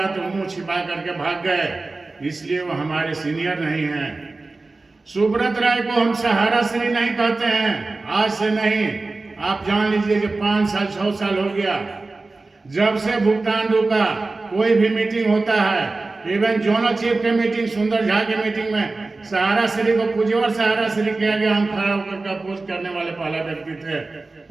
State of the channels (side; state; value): left; quieter; 3.4 dB